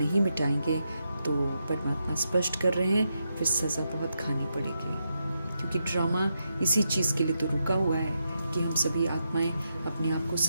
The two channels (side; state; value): both; inverted; correlation -0.84